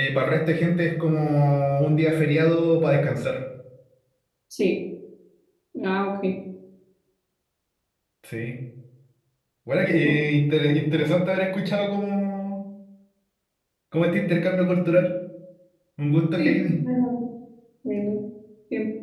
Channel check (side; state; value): both; identical; correlation 1.00